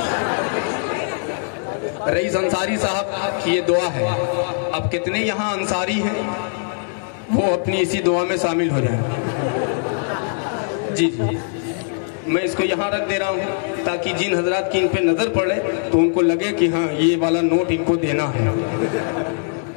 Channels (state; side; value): silent; right; 64 dB below the other